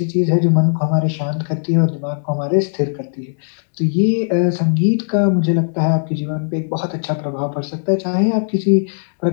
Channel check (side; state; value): right; silent; digital silence